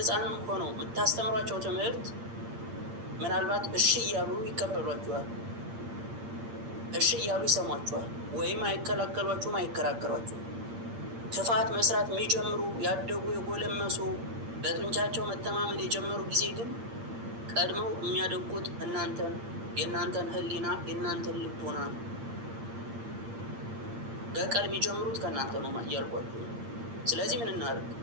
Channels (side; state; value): left; late; 8.7 ms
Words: ሆነው የምታስተምሯቸው ትምህርት ምናልባት እሺ እያሉ ይቀበሏችኋል፣ እሺ እያሉ ይሰሟችኋል፣ ወይም አይከላከሏችሁም፣ አይከራከሯችሁም። ክፋት መስራት የሚጀምሩ ያደጉ የጎለመሱ በጡንቻቸው መተማመን የጀመሩ ጊዜ ግን ቀድመው የሚያደቁት እናንተን፣ የእናንተን ሕሊና፣ የእናንተን ልቦና ነው። በቀል የሚጀምሩት ከእናንተ ነው እያልኳችሁ። ስለዚህ ምን እናደርግ?